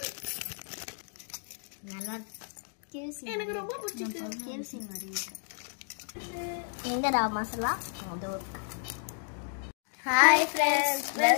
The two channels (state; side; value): silent; right; digital silence